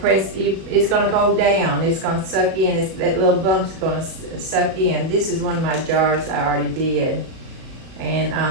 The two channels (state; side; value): late; left; 37 ms